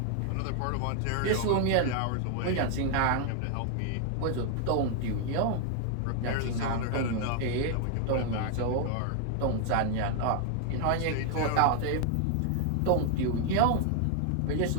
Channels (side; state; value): both; different; correlation 0.00